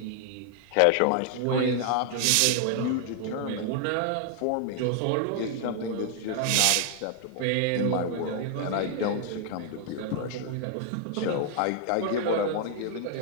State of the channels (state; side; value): different; both; correlation 0.00